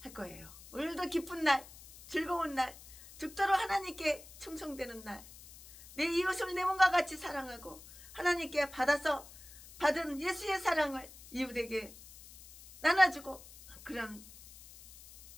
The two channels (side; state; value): left; noise; hiss, 19 dB below the sound